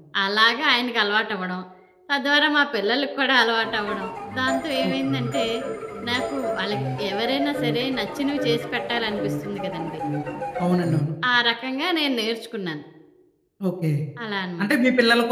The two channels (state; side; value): identical; both; correlation 1.00